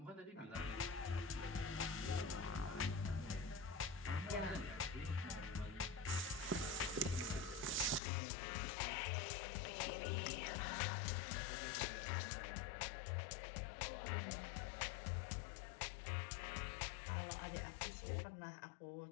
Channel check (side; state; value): right; drops out; at 8.0 s